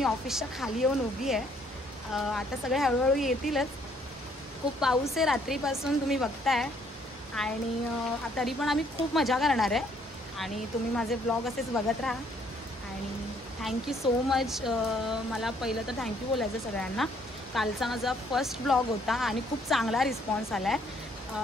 ऑफिसच्या खाली येऊन उभी आहे. आता सगळे हळूहळू येतीलच. खूप पाऊस आहे रात्रीपासून, तुम्ही बघताय. आणि तरी पण आम्ही खूप मजा करणार आहे. आणि तुम्ही माझे ब्लॉग असेच बघत राहा. आणि थँक्यू सो मच. मला पहिलं तर थँक्यू बोलायचं सगळ्यांना. कालचा माझा फर्स्ट ब्लॉग होता आणि खूप चांगला रिस्पॉन्स आला आहे.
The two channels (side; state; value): both; normal; correlation 0.65